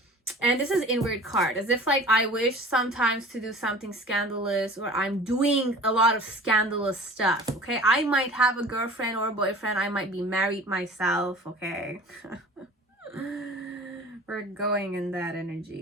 And this is inward card, as if like I wish sometimes to do something scandalous, or I'm doing a lot of scandalous stuff. Okay, I might have a girlfriend or a boyfriend. I might be married myself. Okay. We're going in that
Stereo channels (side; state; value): both; normal; correlation 0.43